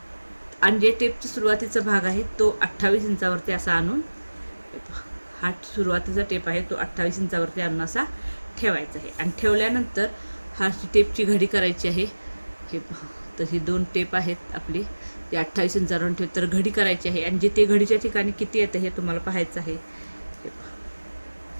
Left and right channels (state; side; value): inverted; both; correlation -1.00